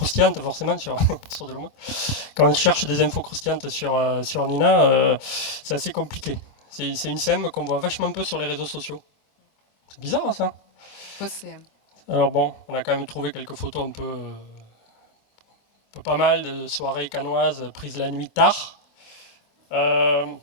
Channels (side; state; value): right; late; 25 ms